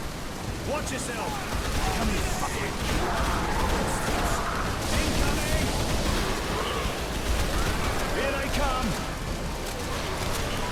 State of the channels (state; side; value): identical; both; correlation 1.00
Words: Watch yourself! Come here, fucker! Incoming! Here they come!